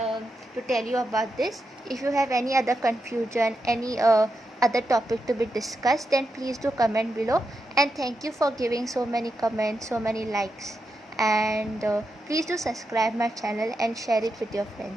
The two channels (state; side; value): normal; both; correlation 0.87